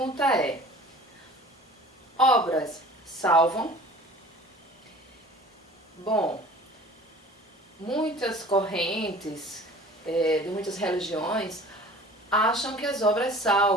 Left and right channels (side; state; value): both; normal; correlation 0.45